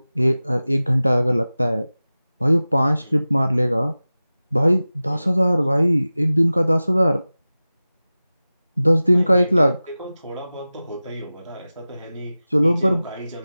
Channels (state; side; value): inverted; both; correlation -0.97